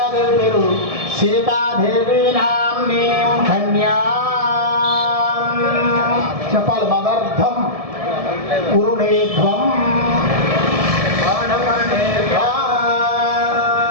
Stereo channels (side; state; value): left; late; 1.7 ms